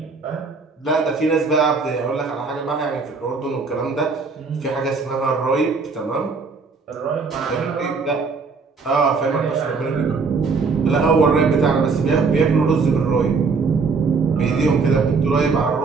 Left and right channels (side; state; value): left; quieter; 4.6 dB